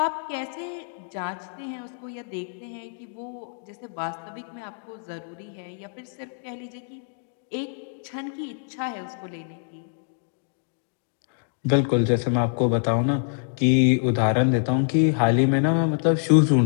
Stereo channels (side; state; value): right; silent; digital silence